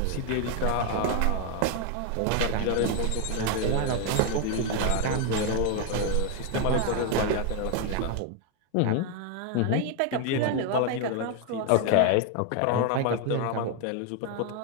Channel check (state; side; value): different; both; correlation 0.01